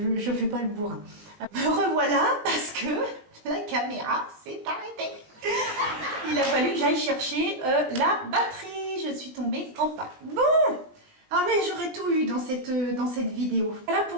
je fais pas le bourrin. Me revoilà parce que la caméra s'est arrêtée. Il a fallu que j'aille chercher la batterie. Je suis tombée en panne. Bon, ah mais j'aurais tout eu dans cette vidéo. Voilà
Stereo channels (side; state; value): left; late; 19 ms